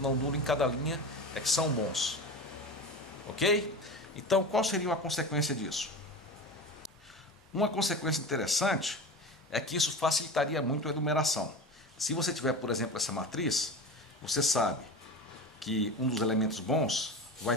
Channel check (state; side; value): normal; both; correlation 0.28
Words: não nulo em cada linha é que são bons, ok? Então, qual seria uma consequência disso? Uma consequência interessante é que isso facilitaria muito a enumeração. Se você tiver, por exemplo, essa matriz, você sabe que um dos elementos bons vai